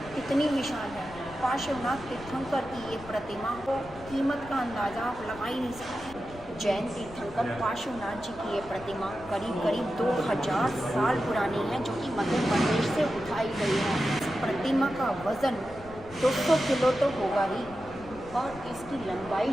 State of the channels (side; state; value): left; noise; rumble, 18 dB below the sound